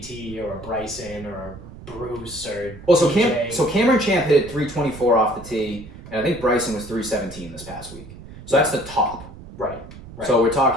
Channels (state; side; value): noise; right; rumble, 16 dB below the sound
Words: or a Bryson or a Bruce or Cameron Champ hit it 324 off the tee, and I think Bryson was 317 this past week. So that's the top. Right. So we're